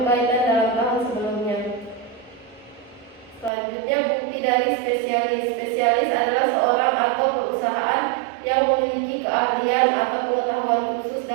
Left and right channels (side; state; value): left; drops out; at 3.5 s